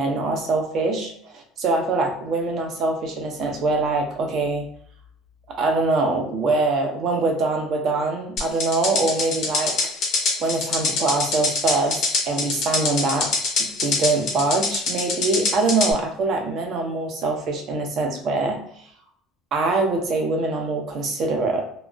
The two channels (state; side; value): normal; both; correlation 0.46